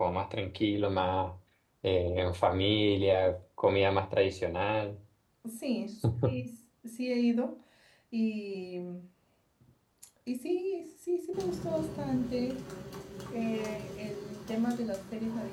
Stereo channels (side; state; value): both; identical; correlation 1.00